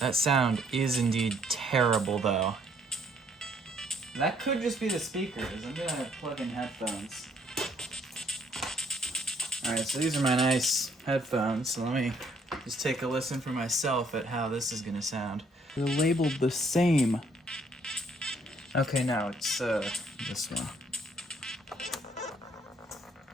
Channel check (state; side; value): normal; both; correlation 0.66